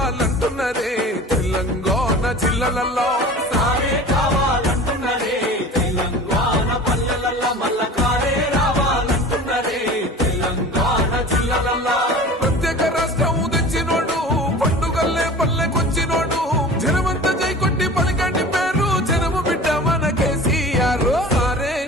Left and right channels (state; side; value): normal; both; correlation 0.39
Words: తెలంగాణ జిల్లాలలో సారే కావాలంటున్నరే తెలంగాణ పల్లెలలో మల్ల కారే రావాలంటున్నరే తెలంగాణ జిల్లాలలో ప్రత్యేక రాష్ట్రం తెచ్చినోడు పండుగల్లే పల్లెకొచ్చినోడు జనమంతా జై కొట్టి పలికండి పేరు జనము బిడ్డ మన కేసీఆర్ సారే